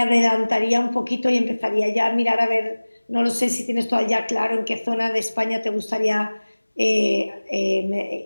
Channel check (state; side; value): inverted; both; correlation -1.00